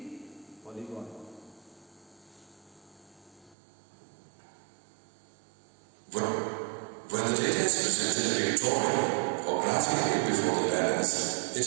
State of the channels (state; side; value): drops out; left; at 3.6 s